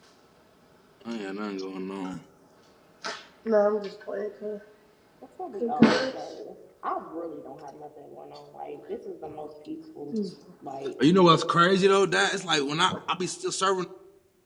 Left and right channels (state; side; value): identical; both; correlation 1.00